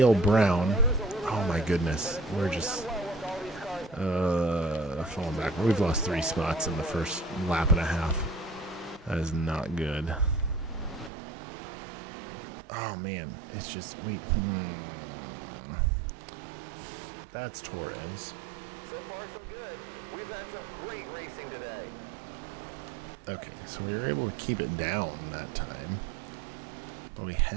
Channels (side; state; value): left; drops out; at 11.1 s